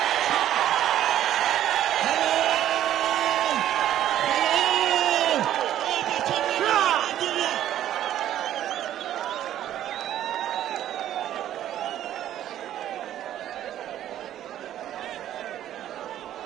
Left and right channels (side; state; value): left; quieter; 11.9 dB